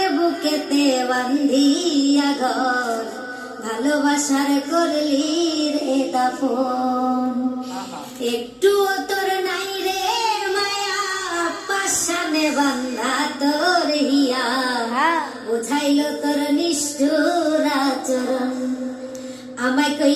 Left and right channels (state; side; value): identical; both; correlation 1.00